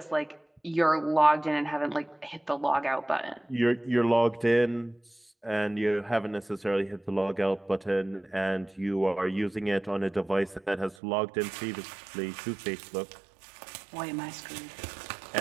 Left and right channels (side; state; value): left; drops out; at 11.0 s